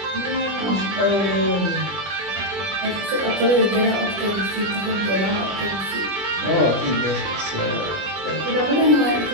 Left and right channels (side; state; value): left; late; 20 ms